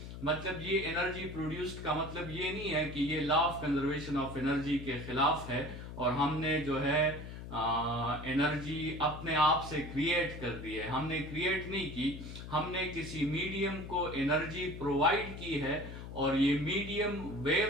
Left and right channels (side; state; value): left; noise; hum, 10 dB below the sound